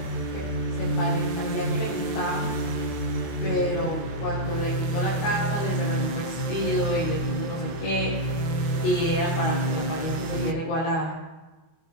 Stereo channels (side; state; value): right; late; 25 ms